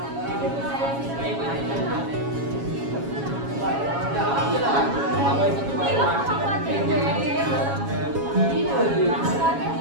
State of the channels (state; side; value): late; left; 7.2 ms